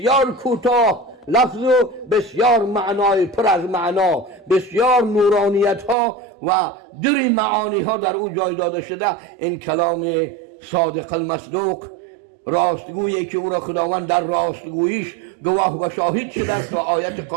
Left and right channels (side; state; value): left; drops out; at 6.0 s